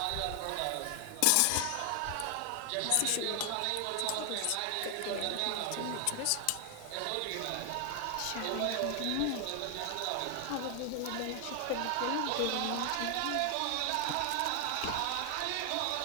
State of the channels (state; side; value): different; both; correlation 0.00